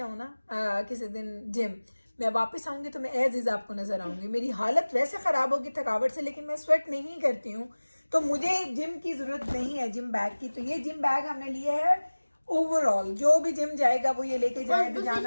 ना किसी दिन जिम, मैं वापस आऊंगी तो मैं एज इज आपको नजर आऊंगी। मेरी हालत वैसे खराब होगी थकावट से, लेकिन मैं स्वेट नहीं करती हूँ, तो मुझे जिम की जरूरत नहीं है जिम बैग की। तो ये जिम बैग हमने लिए है ओवरऑल, जो भी जिम जाएगा वो ये लेके जाए।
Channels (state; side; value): inverted; both; correlation -1.00